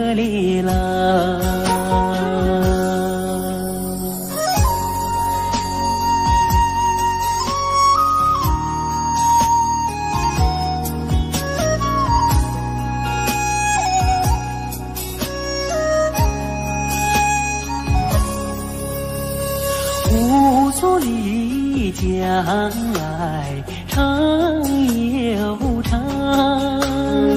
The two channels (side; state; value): both; identical; correlation 1.00